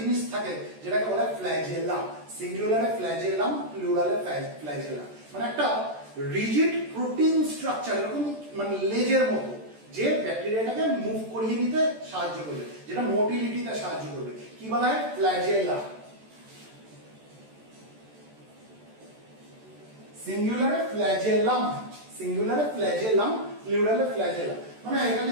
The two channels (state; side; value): late; left; 14 ms